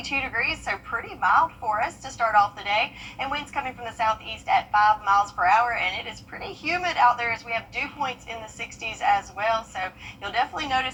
degrees, so pretty mild for us to start off the day. And winds coming from the southeast at 5 miles per hour, and it is pretty humid out there as we have dew points in the 60s as well. So you'll definitely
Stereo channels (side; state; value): both; identical; correlation 1.00